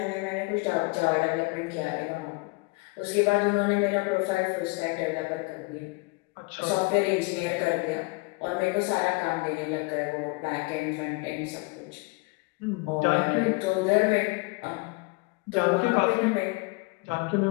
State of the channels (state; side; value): quieter; right; 27.0 dB